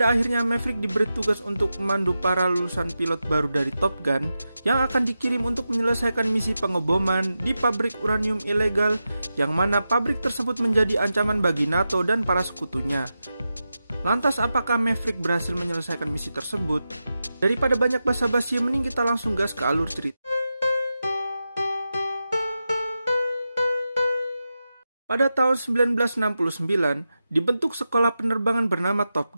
akhirnya Maverick diberi tugas untuk memandu para lulusan pilot baru dari Top Gun yang akan dikirim untuk menyelesaikan misi pengeboman di pabrik uranium ilegal, yang mana pabrik tersebut menjadi ancaman bagi NATO dan para sekutunya. Lantas apakah Maverick berhasil menyelesaikan misi tersebut? Daripada banyak basa-basi, mending kita langsung gas ke alur cerita. Pada tahun 1969, dibentuk sekolah penerbangan bernama Top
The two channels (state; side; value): inverted; both; correlation -0.91